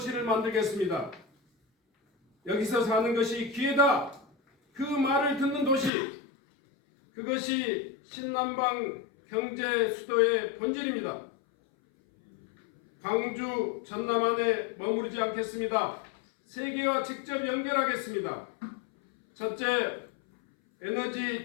만들겠습니다. 여기서 사는 것이 기회다. 그 말을 듣는 도시, 그것이 신남방 경제 수도의 본질입니다. 광주, 전남 안에 머무르지 않겠습니다. 세계와 직접 연결하겠습니다. 첫째, 에너지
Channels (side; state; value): right; drops out; at 5.9 s